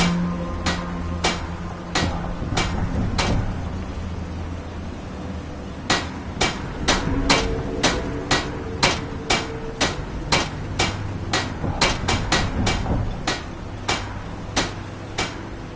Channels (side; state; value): both; identical; correlation 1.00